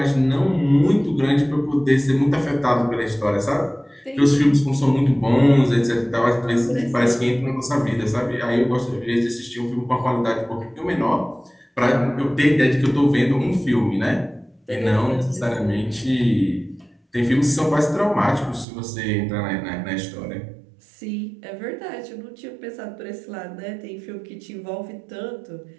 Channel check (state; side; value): drops out; left; at 18.7 s